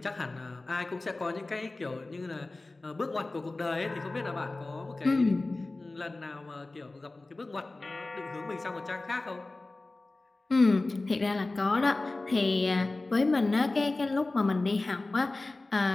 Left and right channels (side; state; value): right; quieter; 3.1 dB